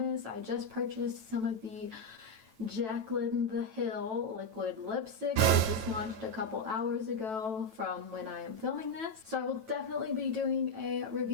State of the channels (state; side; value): late; left; 9.1 ms